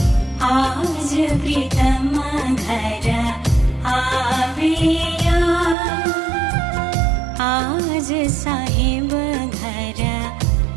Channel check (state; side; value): drops out; left; at 5.8 s